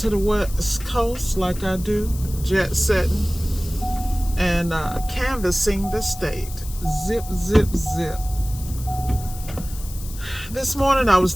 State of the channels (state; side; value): noise; left; hiss, 15 dB below the sound